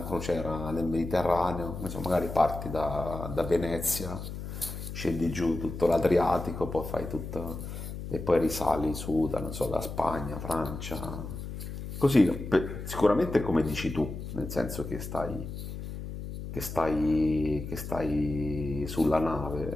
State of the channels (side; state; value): left; noise; hum, 8 dB below the sound